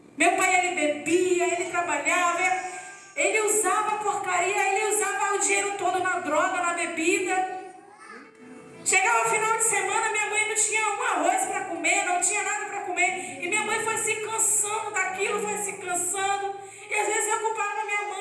Meu pai, ele bebia, ele trabalhava, ele usava porcaria, ele usava o dinheiro todo na droga, na bebida. Chegava o final de semana, minha mãe não tinha um arroz para comer, não tinha nada para comer. E minha mãe foi se cansando daquilo, foi se cansando. E às vezes eu culpava minha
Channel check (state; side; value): identical; both; correlation 1.00